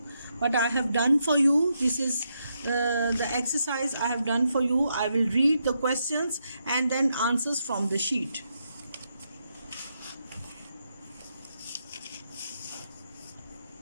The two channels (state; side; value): inverted; both; correlation -0.81